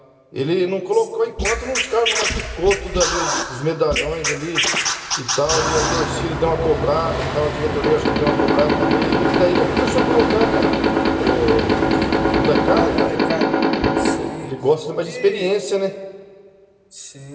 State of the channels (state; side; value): identical; both; correlation 1.00